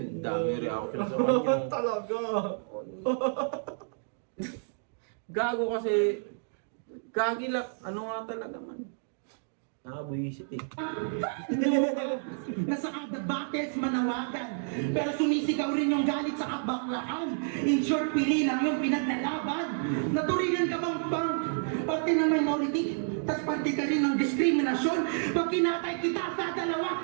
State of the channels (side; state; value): left; silent; digital silence